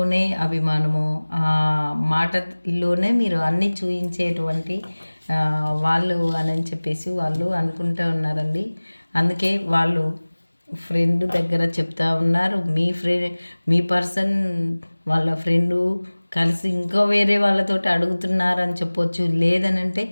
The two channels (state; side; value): inverted; both; correlation -1.00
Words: అభిమానము, మాటలోనే మీరు అన్నీ చూయించేటువంటి వాళ్ళు అని చెప్పేసి వాళ్ళు అనుకుంటూ ఉన్నారండి. అందుకే వాళ్ళు ఫ్రెండ్ దగ్గర చెప్తా ఉన్నారు. మీ పర్సన్ వాళ్ళ ఫ్రెండు కలిసి ఇంకా వేరే వాళ్ళతోటి అడుగుతున్నారని చెప్పొచ్చు. లేదనంటే